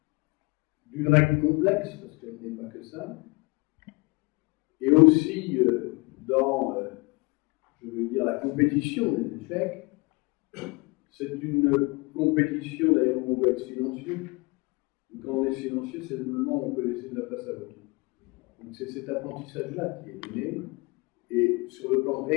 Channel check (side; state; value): right; quieter; 27.1 dB